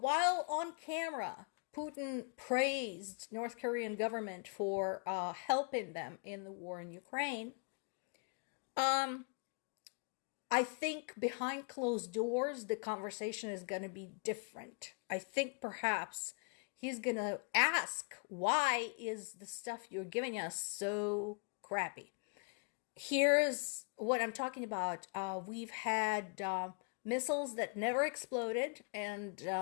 on camera, Putin praised North Korean government for helping them in the war in Ukraine, I think behind closed doors, the conversation is going to be different. I think perhaps he's going to ask, why is the stuff you're giving us so crappy? Here's what I'm talking about. We've had missiles that never exploded and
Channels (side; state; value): right; quieter; 36.1 dB